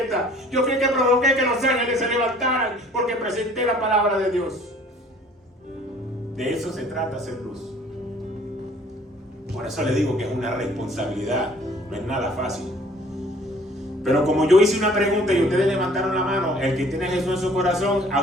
Yo fui el que provoqué que los ángeles se levantaran porque presenté la palabra de Dios. De eso se trata, hacer luz. Por eso le digo que es una responsabilidad, no es nada fácil. Pero como yo hice una pregunta y ustedes levantaron la mano, el que tiene a Jesús en su corazón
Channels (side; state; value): both; normal; correlation 0.54